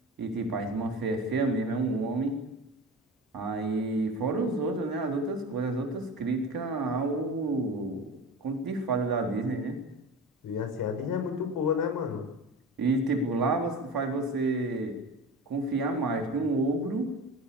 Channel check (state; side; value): normal; both; correlation 0.32